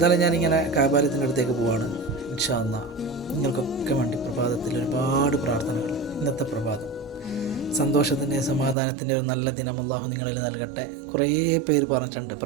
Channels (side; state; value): left; drops out; at 8.8 s